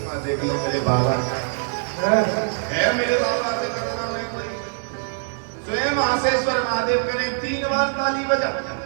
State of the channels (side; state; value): left; silent; 59 dB below the other